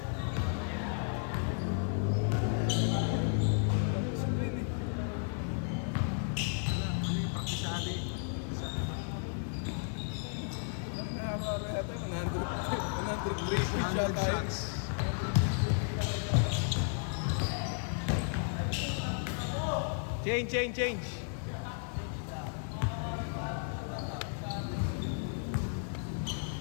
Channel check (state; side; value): silent; right; 55 dB below the other